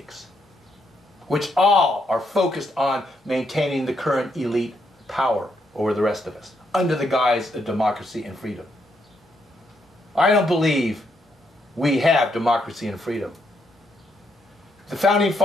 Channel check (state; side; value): normal; both; correlation 0.77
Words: which all are focused on maintaining the current elite power over the rest of us, under the guise of democracy and freedom. I don't believe we have democracy and freedom. The Founding